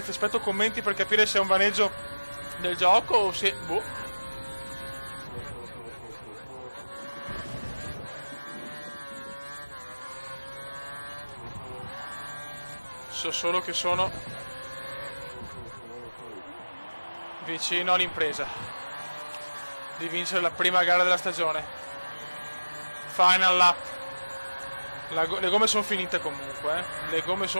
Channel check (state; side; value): inverted; both; correlation -1.00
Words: aspetto commenti per capire se è un vaneggio del gioco o se... boh. So solo che sono vicino all'impresa di vincere la prima gara della stagione. Final lap. Le gomme sono finite comunque, le gomme